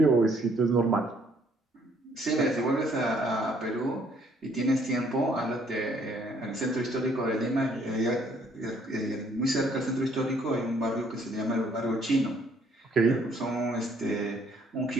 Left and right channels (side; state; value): both; normal; correlation 0.64